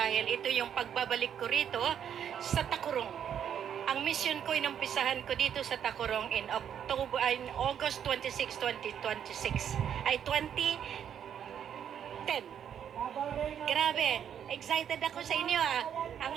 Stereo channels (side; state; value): left; quieter; 8.9 dB